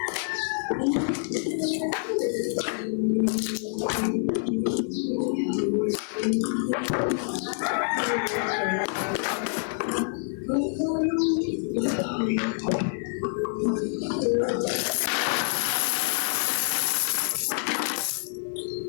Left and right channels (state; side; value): silent; right; 60 dB below the other